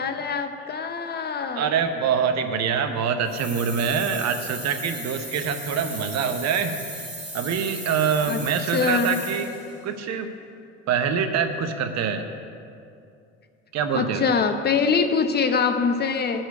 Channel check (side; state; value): both; normal; correlation 0.05